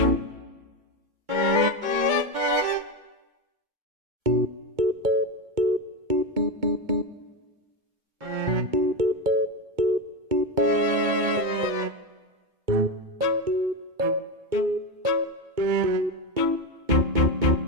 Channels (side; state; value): left; late; 2.2 ms